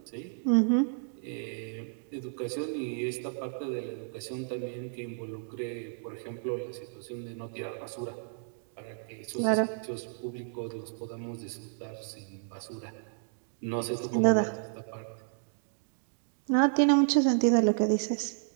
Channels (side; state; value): left; silent; digital silence